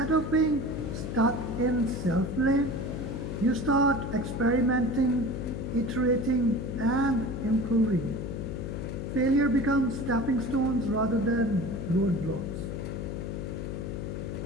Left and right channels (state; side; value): noise; left; hum, 5 dB below the sound